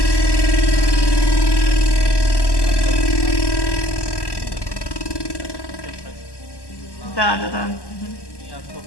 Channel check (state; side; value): late; right; 1.1 ms